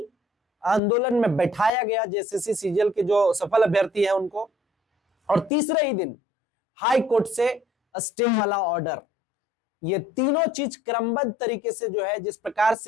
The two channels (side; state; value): both; normal; correlation 0.59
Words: आंदोलन में बैठाया गया जेएसएससी सीजीएल के जो सफल अभ्यर्थी हैं उनको, और तीसरे ही दिन हाई कोर्ट से स्टे वाला ऑर्डर। ये तीनों चीज क्रमबद्ध तरीके से जो है जिस प्रकार